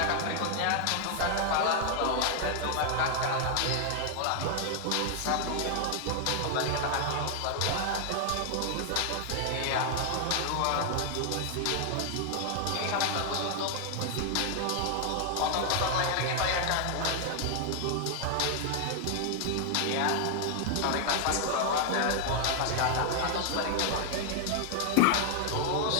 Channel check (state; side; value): different; both; correlation 0.00